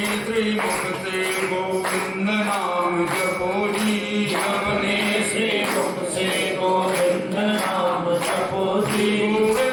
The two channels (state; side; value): identical; both; correlation 1.00